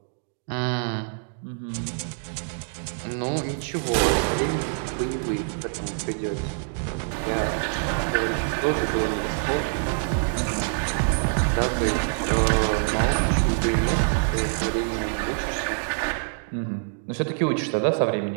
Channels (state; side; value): silent; left; digital silence